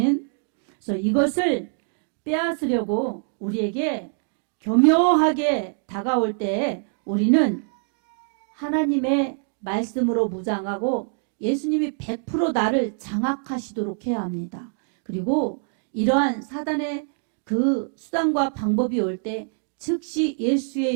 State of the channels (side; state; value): left; silent; 62 dB below the other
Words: 그래서 이것을 빼앗으려고 우리에게 교묘하게 다가올 때 우리는 하나님의 말씀으로 무장하고 예수님이 100% 나를 장악하시도록 해야 합니다. 그리고 이러한 사단의 그 수단과 방법이 올 때 즉시 예수의